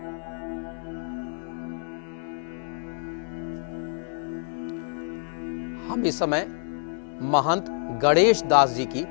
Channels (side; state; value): right; silent; digital silence